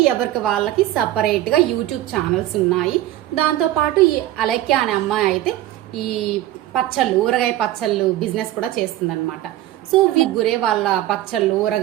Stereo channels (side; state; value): left; quieter; 14.4 dB